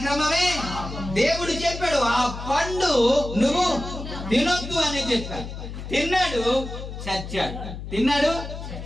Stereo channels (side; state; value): left; noise; hum, 9 dB below the sound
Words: దేవుడు చెప్పాడు ఆ పండు నువ్వు తినొద్దు అని చెప్పాడు. తిన్నాడు, చచ్చాడు. తిన్నాడు,